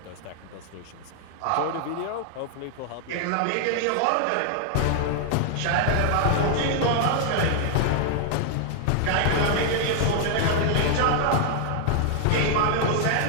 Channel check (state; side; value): different; both; correlation 0.00